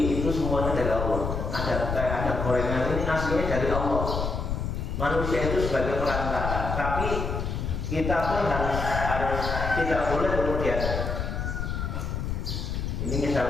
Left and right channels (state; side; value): noise; left; rumble, 2 dB below the sound